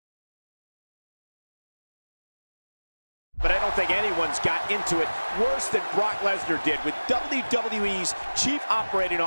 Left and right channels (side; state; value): both; inverted; correlation -1.00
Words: But I don't think anyone's got into it worse than Brock Lesnar did with WWE's Chief Operating